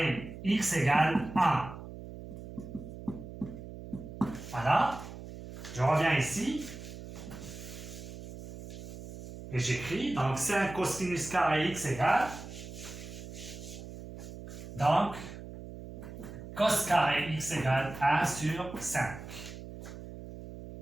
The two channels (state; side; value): noise; right; hum, 12 dB below the sound